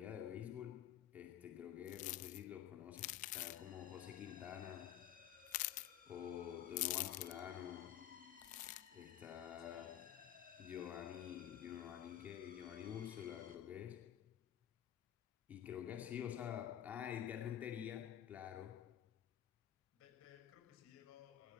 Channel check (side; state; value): right; quieter; 11.4 dB